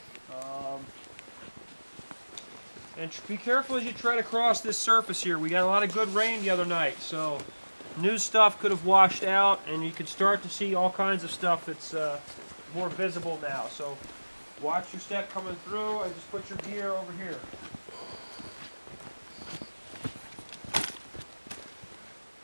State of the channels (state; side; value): inverted; both; correlation -1.00